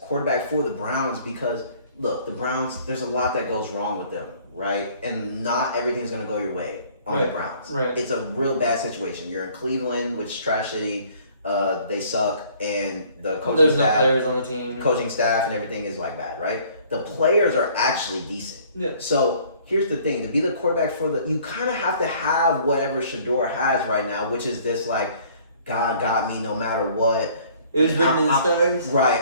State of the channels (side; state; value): both; inverted; correlation -0.56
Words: for the Browns because look, the Browns, there's a lot that goes wrong with them, right? And not everything's gonna go your way on the Browns. Right. It's a real bad situation. You're in Cleveland, which is trash city. They suck, and the coaching There's staff, no players on the team. Coaching staff and everything is like bad, right? The players are actually decent. Yeah. So here's the thing: to be the quarterback for you kind of have to have whatever Shador has right now, which is this like, God got me no matter what. It was written in the stars. Right,